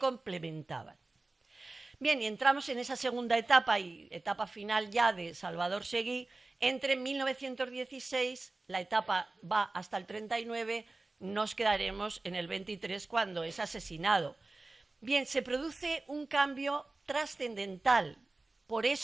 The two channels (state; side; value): quieter; left; 3.2 dB